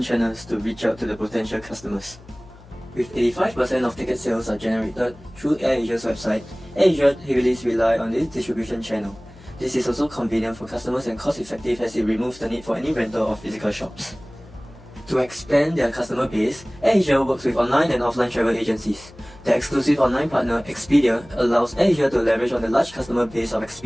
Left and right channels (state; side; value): noise; left; hum, 22 dB below the sound